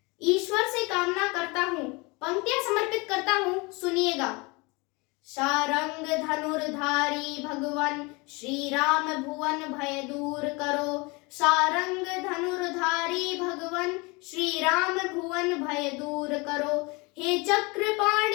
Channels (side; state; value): right; quieter; 26.8 dB